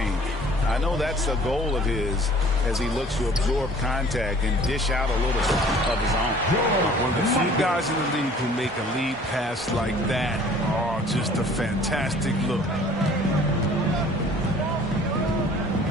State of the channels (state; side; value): normal; both; correlation 0.52